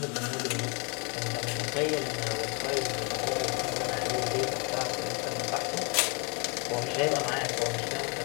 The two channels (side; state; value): right; quieter; 33.0 dB